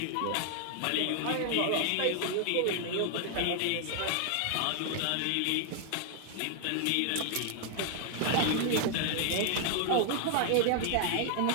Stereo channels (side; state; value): both; different; correlation 0.00